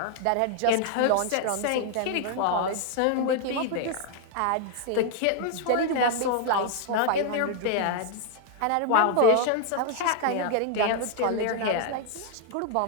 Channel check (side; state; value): both; different; correlation 0.00